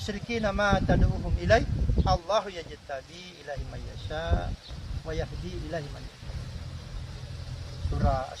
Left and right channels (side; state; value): both; identical; correlation 1.00